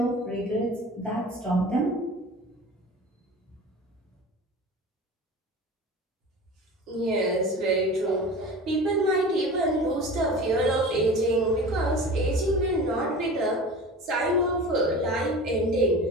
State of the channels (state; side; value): normal; both; correlation 0.35